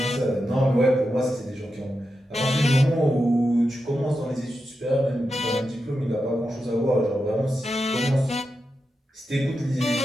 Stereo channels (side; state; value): both; normal; correlation 0.88